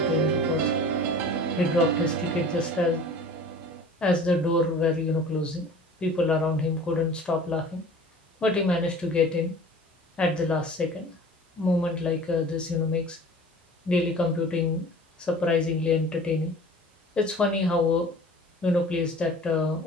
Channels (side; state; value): both; normal; correlation 0.43